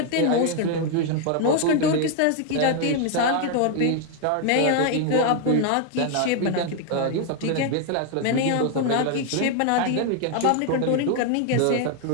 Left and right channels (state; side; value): different; both; correlation 0.00